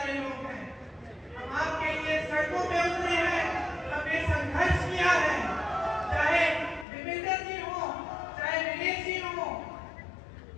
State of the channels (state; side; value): drops out; right; at 6.9 s